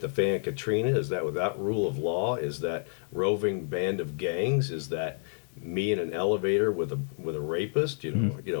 the fan Katrina? Is that without rule of law? Is that roving band of gangs? Is that me in an elevator with a rapist?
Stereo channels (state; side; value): silent; right; digital silence